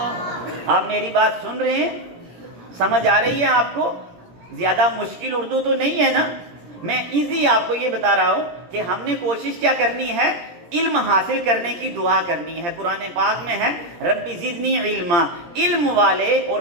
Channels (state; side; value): late; left; 17 ms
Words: آپ میری بات سن رہے ہیں، سمجھ آ رہی ہے آپ کو؟ زیادہ مشکل اردو تو نہیں ہے نا؟ میں ایزی آپ کو یہ بتا رہا ہوں کہ ہم نے کوشش کیا کرنی ہے، علم حاصل کرنے کی دعا کرنی ہے۔ قرآن پاک میں ہے ربی زدنی علما، علم والے اور